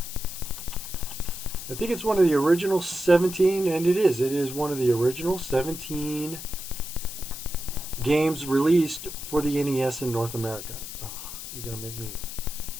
I think it's one of the original 17, and it is. It is one of the original 17 games released for the NES in North America. Oh, you're gonna make me.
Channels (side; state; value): left; noise; hiss, 10 dB below the sound